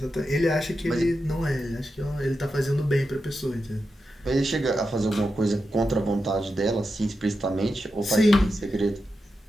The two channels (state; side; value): normal; both; correlation 0.89